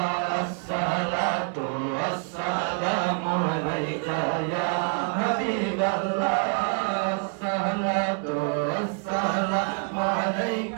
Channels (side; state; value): left; quieter; 39.7 dB